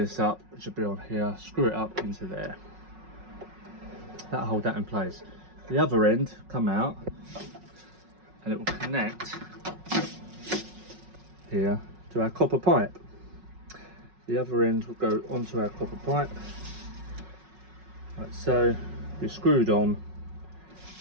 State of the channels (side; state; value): left; late; 5.4 ms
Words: up, which will be on here, screw it up into there. That'll hold that in place. The other end come out, and it will connect here to our copper pipe. The other end will go onto our copper pipe, like so. Be screwed on